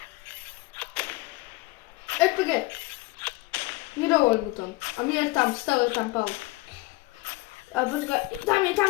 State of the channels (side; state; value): right; quieter; 21.8 dB